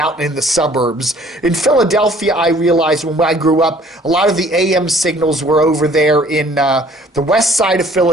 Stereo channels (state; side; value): normal; both; correlation 0.56